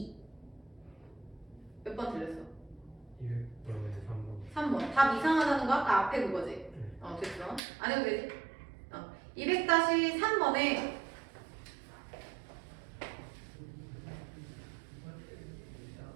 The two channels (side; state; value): left; drops out; at 7.6 s